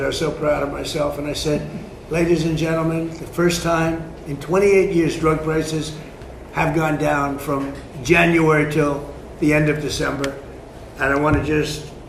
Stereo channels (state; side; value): identical; both; correlation 1.00